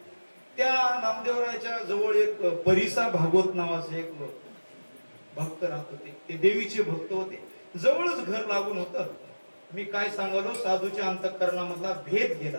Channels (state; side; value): inverted; both; correlation -1.00